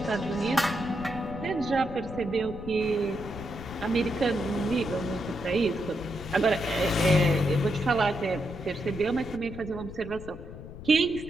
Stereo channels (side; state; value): left; noise; rumble, 13 dB below the sound